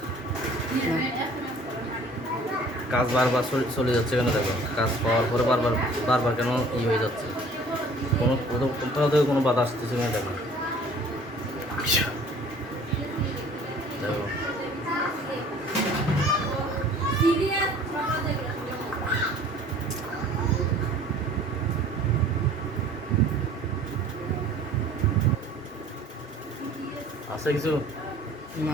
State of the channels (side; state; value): both; normal; correlation 0.51